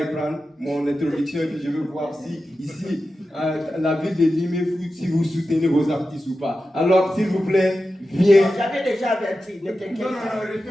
mon introduction et puis je veux voir si ici, la ville de Limé, si vous soutenez vos artistes ou pas. Alors, s'il vous plaît, viens. J'avais déjà averti, ne t'inquiète Non, pas.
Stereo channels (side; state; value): both; normal; correlation 0.92